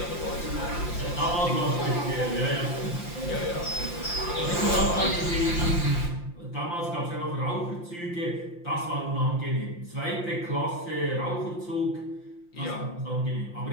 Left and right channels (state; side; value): late; right; 5.8 ms